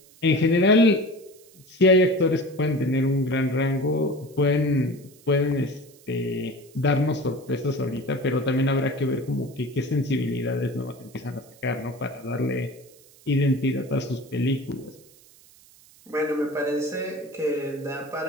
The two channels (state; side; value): noise; right; hiss, 26 dB below the sound